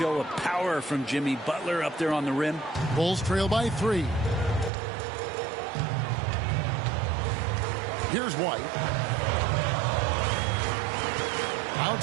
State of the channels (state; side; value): drops out; left; at 4.7 s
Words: of power from Jimmy Butler up there on the rim. Bulls trail by 3. Here's White.